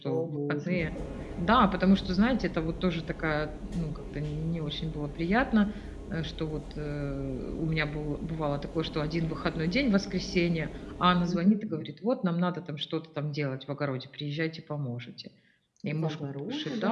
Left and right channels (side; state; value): both; identical; correlation 1.00